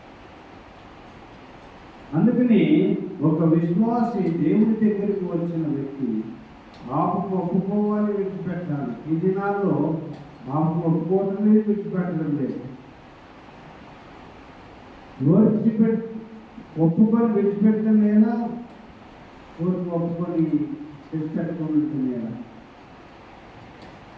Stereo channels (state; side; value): identical; both; correlation 1.00